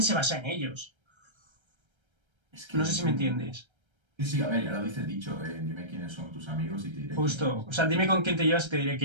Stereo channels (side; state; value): left; late; 1.3 ms